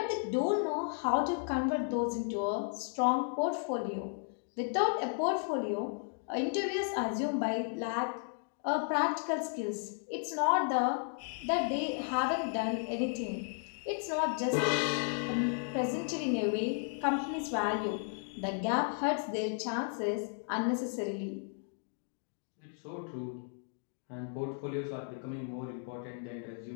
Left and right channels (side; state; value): right; silent; 55 dB below the other